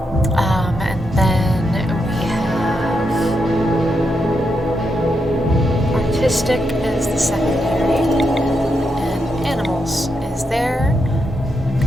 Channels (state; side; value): normal; both; correlation 0.83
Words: Logistic is the secondary. And animals is there.